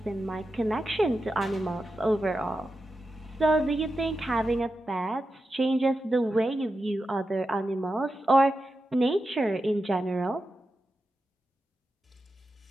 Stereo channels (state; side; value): normal; both; correlation 0.90